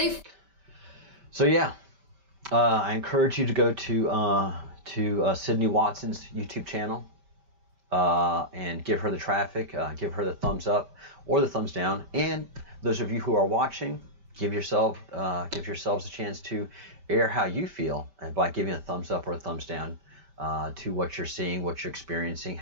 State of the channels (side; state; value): left; late; 5.1 ms